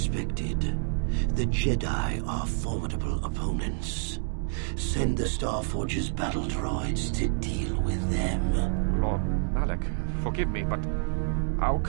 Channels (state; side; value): silent; left; digital silence